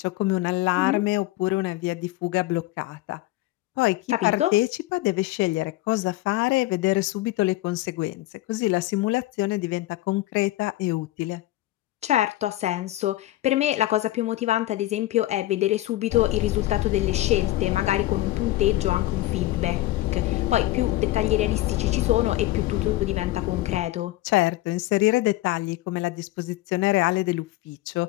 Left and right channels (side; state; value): right; quieter; 16.8 dB